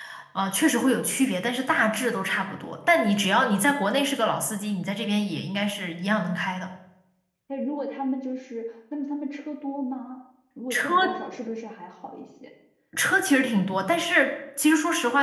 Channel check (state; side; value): identical; both; correlation 1.00